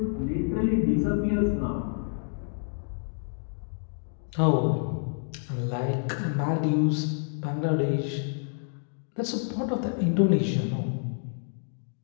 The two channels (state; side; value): silent; right; digital silence